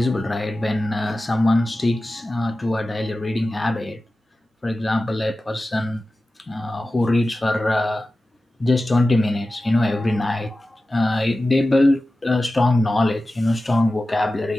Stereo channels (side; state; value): both; normal; correlation 0.95